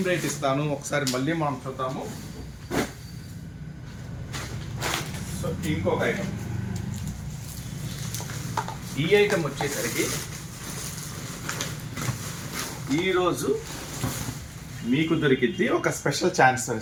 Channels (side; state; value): both; identical; correlation 1.00